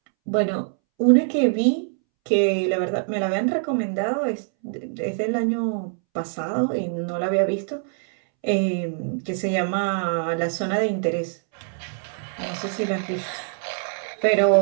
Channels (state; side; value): silent; left; 63 dB below the other